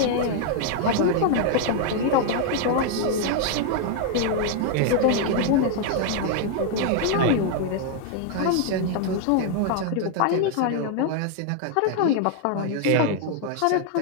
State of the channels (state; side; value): different; both; correlation 0.00